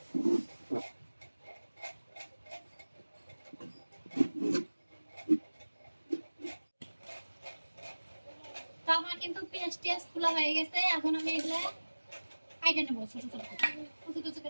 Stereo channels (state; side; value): inverted; both; correlation -1.00